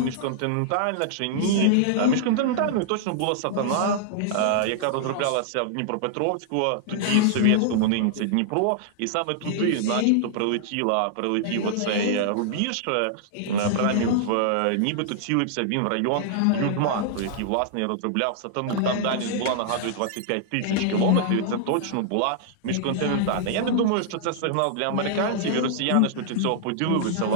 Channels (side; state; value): both; different; correlation -0.01